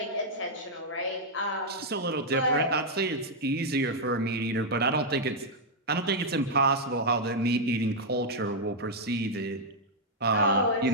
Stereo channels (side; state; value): both; normal; correlation -0.03